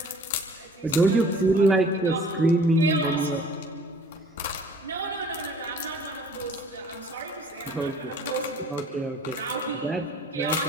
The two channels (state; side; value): normal; both; correlation 0.51